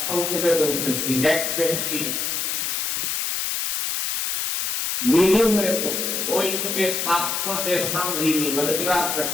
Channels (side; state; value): left; noise; hiss, 1 dB below the sound